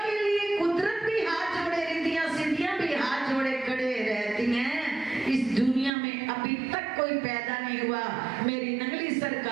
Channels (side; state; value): left; drops out; at 5.9 s